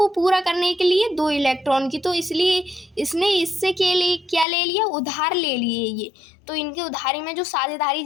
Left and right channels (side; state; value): right; drops out; at 4.5 s